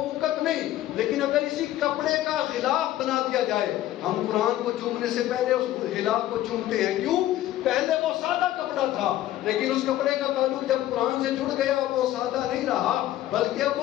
نہیں، لیکن اگر اسی کپڑے کا غلاف بنا دیا جائے، ہم قرآن کو چومنے سے پہلے اس غلاف کو چومتے ہیں، کیوں؟ پہلے وہ سادہ کپڑا تھا، لیکن اس کپڑے کا تعلق جب قرآن سے جڑ گیا وہ سادہ نہیں رہا بلکہ اب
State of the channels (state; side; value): quieter; right; 13.9 dB